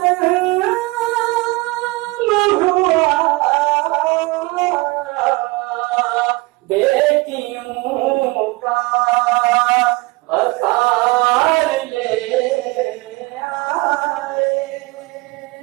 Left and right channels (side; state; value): left; quieter; 23.4 dB